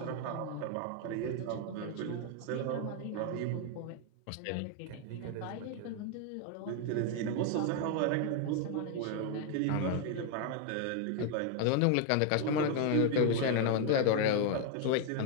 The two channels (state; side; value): different; both; correlation 0.00